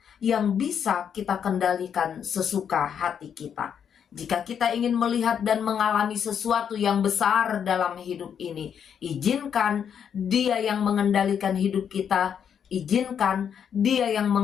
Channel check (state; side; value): quieter; right; 8.0 dB